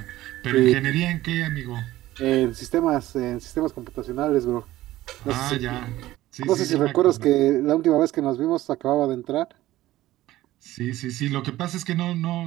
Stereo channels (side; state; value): left; quieter; 15.8 dB